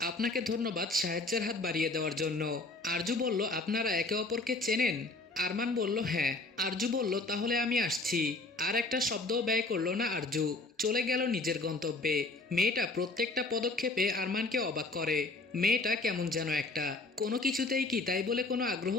আপনাকে ধন্যবাদ সাহায্যের হাত বাড়িয়ে দেওয়ার জন্য। আরজু বলল, আপনারা একে অপরকে চেনেন? আরমান বলল, হ্যাঁ। আরজু বলল, তাহলে আমি আসছি। আর একটা শব্দও ব্যয় করলো না আরজু, চলে গেল নিজের গন্তব্যে। মেয়েটা প্রত্যেকটা পদক্ষেপে আরমানকে অবাক করে। মেয়েটা কেমন যেন একটা, কোনো কিছুতেই কি তাই বলে কোনো আগ্রহ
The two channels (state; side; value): quieter; right; 3.2 dB